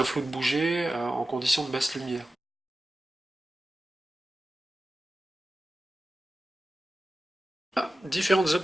flou de bouger en conditions de basse lumière. Différentes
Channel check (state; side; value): normal; both; correlation 0.94